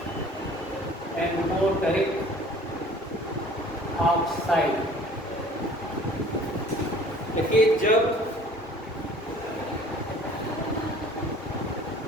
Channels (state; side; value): normal; both; correlation 0.50